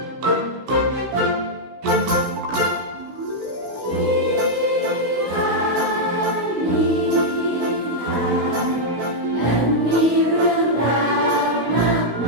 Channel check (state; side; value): late; left; 16 ms